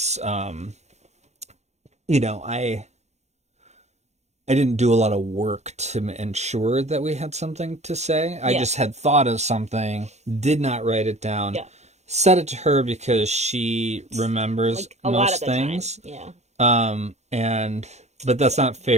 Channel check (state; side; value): late; left; 0.32 ms